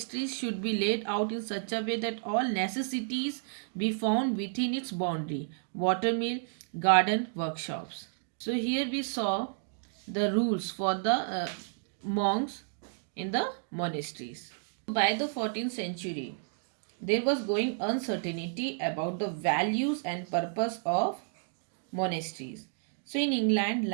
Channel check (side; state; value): left; silent; digital silence